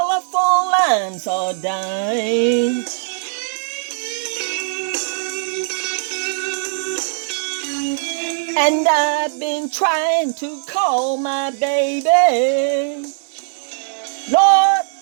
lines are down. And I've been trying to call my baby, Lord,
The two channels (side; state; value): left; silent; digital silence